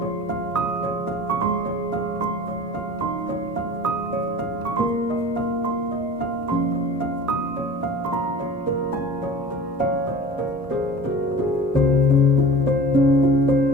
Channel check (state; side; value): normal; both; correlation 0.39